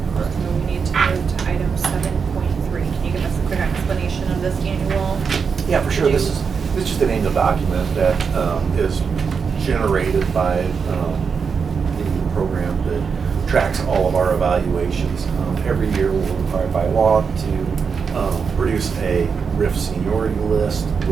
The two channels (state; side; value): quieter; left; 5.9 dB